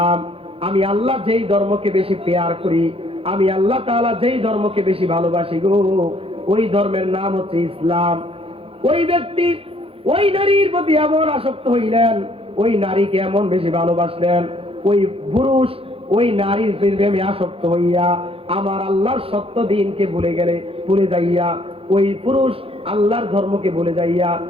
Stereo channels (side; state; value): left; late; 0.27 ms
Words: আমি আল্লাহ যেই ধর্মকে বেশি পেয়ার করি, আমি আল্লাহ তাআলা যেই ধর্মকে বেশি ভালোবাসি গো, ওই ধর্মের নাম হচ্ছে ইসলাম। ওই ব্যক্তি ওই নারীর প্রতি এমন আসক্ত হইলেন, ওই নারীকে এমন বেশি ভালোবাসলেন, ওই পুরুষ ওই নারীর প্রেমে আসক্ত হইয়া আমার আল্লাহর সত্য দিনকে ভুলে যাইয়া ওই পুরুষ আল্লাহর ধর্মকে ভুলে যাইয়া